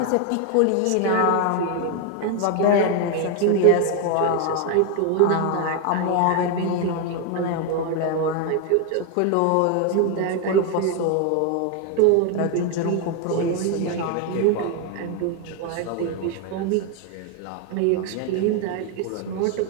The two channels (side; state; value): both; different; correlation 0.01